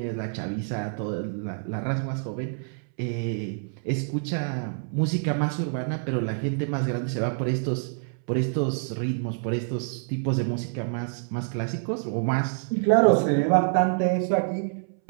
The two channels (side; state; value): left; silent; 60 dB below the other